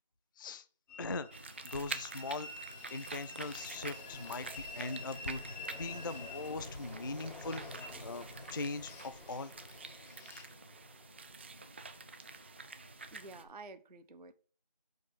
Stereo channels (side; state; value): both; inverted; correlation -0.31